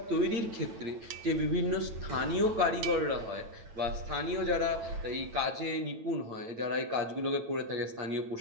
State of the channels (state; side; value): late; left; 9.0 ms